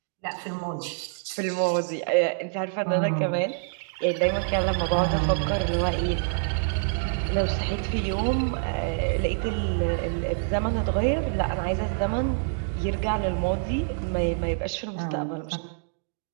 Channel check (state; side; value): silent; left; digital silence